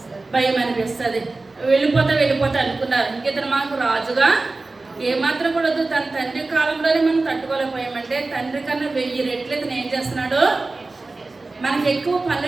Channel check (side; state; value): left; quieter; 3.4 dB